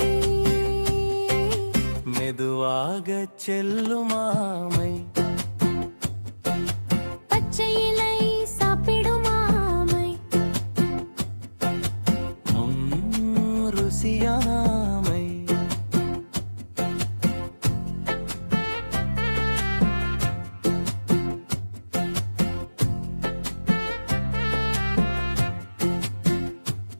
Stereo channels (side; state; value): both; inverted; correlation -1.00